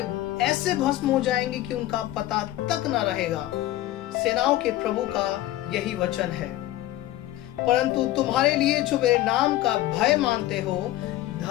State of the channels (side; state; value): right; quieter; 15.2 dB